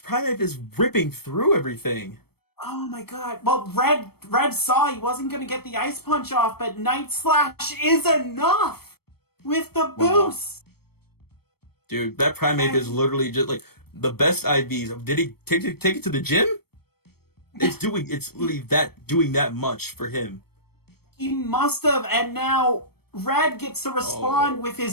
Primeape is ripping through everything. Oh my god. Well, Red saw he wasn't going to get the Ice Punch off, but Night Slash is enough with the boost. Dude, that Primeape is literally just like the best IVs. Did he take it to the gym? It's literally doing that much for him. He must have, and now Red gets to respond with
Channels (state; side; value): late; right; 0.96 ms